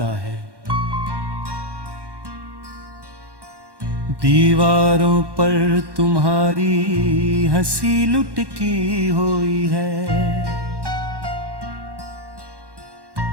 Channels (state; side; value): late; left; 1.1 ms